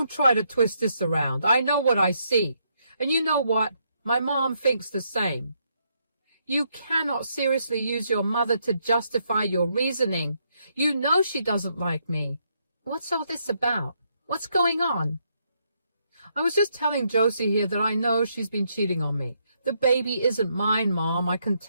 try to twist this around. I know what I see. And you know what? My mom thinks the same. You cannot seriously use your mother to justify your reasoning. You know she doesn't like me. What's all this about? What's going on? I was just telling Josie here that I know she's been cheating on me. The baby isn't mine, Mom. I can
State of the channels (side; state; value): both; inverted; correlation -0.76